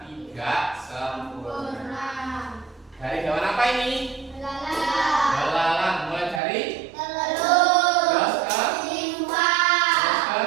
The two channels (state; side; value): drops out; left; at 6.4 s